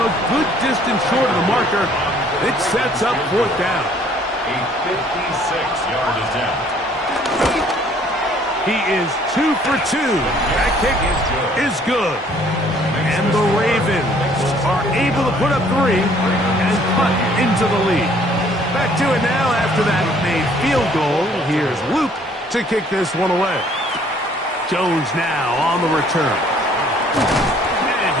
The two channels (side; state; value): both; normal; correlation 0.59